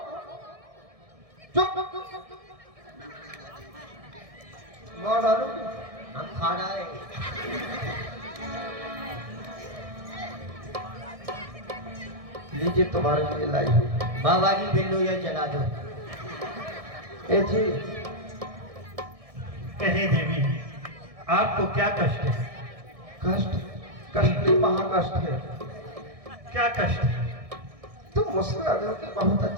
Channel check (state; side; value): late; left; 1.6 ms